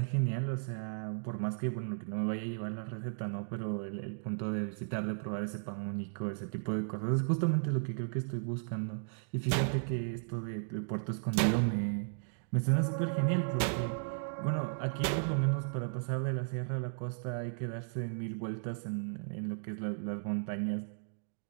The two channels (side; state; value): left; silent; digital silence